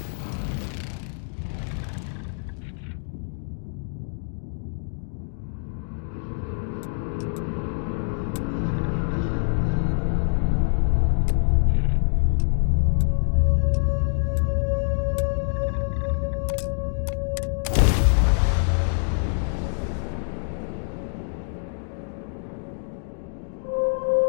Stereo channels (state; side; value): silent; right; digital silence